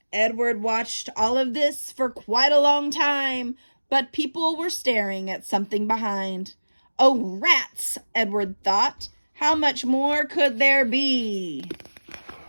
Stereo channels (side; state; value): both; inverted; correlation -1.00